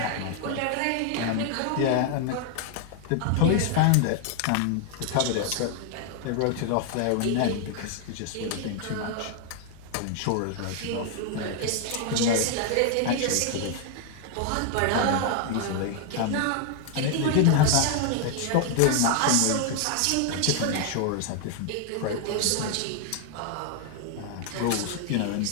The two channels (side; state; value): both; different; correlation 0.00